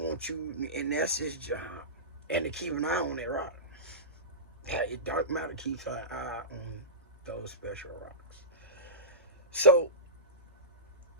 you, and that's its job. And to keep an eye on that rock. Dark matter keeps an eye on those special rocks. So,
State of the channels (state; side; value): normal; both; correlation -0.18